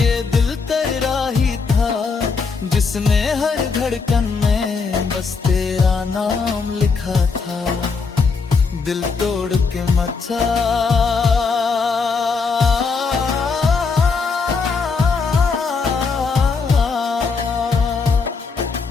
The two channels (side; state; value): right; quieter; 4.8 dB